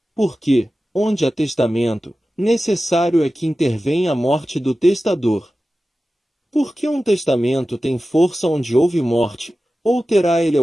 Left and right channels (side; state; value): both; normal; correlation 0.95